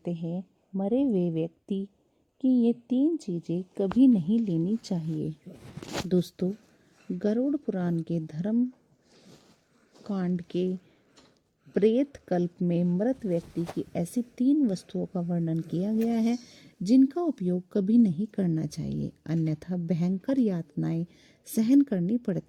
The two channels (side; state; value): both; identical; correlation 1.00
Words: हैं मरे हुए व्यक्ति की ये 3 चीज़ें कभी नहीं लेनी चाहिए। दोस्तों, गरुड़ पुराण के धर्म कांड के प्रेत कल्प में मृत व्यक्ति की ऐसी 3 वस्तुओं का वर्णन किया गया है जिनका उपयोग कभी नहीं करना चाहिए, अन्यथा भयंकर यातनाएं सहन करनी